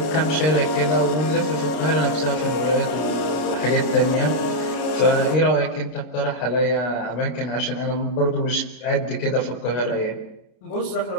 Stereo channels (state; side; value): late; right; 33 ms